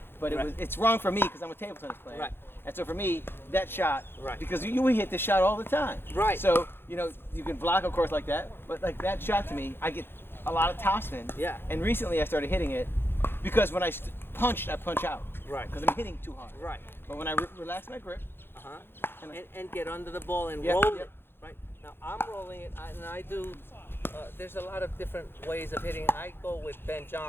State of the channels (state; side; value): late; right; 0.11 ms